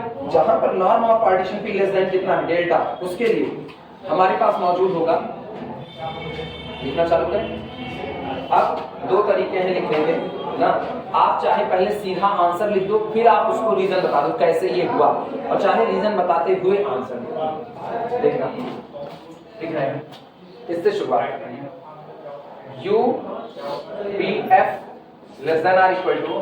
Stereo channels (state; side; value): identical; both; correlation 1.00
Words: जहां पर norm of partition P less than कितना है? डेल्टा, उसके लिए हमारे पास मौजूद होगा। लिखना चालू करें। अब दो तरीके हैं लिखने के ना, आप चाहे पहले सीधा आंसर लिख दो, फिर आप उसको रीजन बता दो कैसे ये हुआ, और चाहे रीजन बताते हुए आंसर लिखो। देखना, लिख रहे हैं, इससे शुरुआत कर रहे हैं। UPF less than are equal to